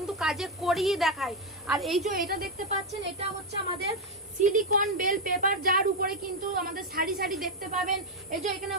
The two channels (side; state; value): both; normal; correlation 0.05